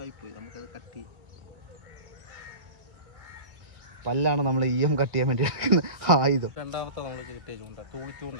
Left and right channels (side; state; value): left; late; 1.8 ms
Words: ആയിപ്പോയി, നമുക്കത് കട്ട് ചെയ്യും. പല്ലാണ് നമ്മൾ ഈയം കട്ട് ചെയ്യാൻ വേണ്ടി എടുക്കുന്നത് ആയുധം. രണ്ടാമത്തെ നമ്മൾ കിട്ടിയ ചൂണ്ട